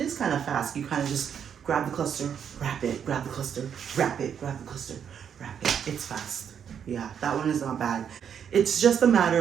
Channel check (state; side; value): quieter; left; 8.1 dB